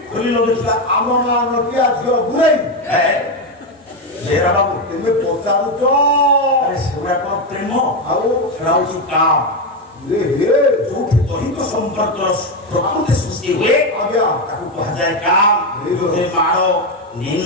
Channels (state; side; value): normal; both; correlation 0.10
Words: ଖୋଲି ଲଗେଇଥିଲା ଆମ ଗାଁ ନଟିଆ ଝିଅ ଗୁରେଇ ଜେରା ବାବୁ ତେମେ ପଚାରୁଛ ସେଗୁଡା କଣ ପ୍ରେମ ଆଉ ସେଟା ହଉଛି କାମ ଯୋଉଠି ଦୈହିକ ସମ୍ପର୍କର ପ୍ରକୃତି ସୃଷ୍ଟି ହୁଏ ଆଜ୍ଞା ତାକୁ କୁହାଯାଏ କାମ ମାଳ